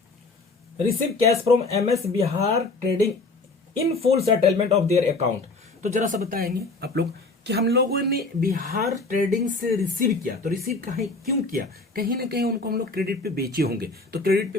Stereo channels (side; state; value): right; quieter; 3.5 dB